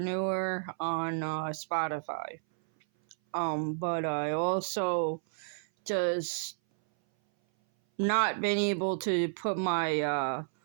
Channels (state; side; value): silent; left; 57 dB below the other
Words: on Spotify. But I also just not been able to put my